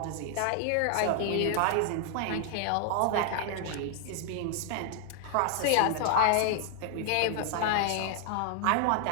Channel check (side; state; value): both; different; correlation 0.00